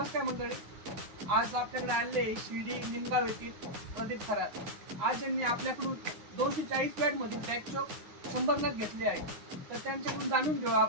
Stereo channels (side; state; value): left; late; 9.6 ms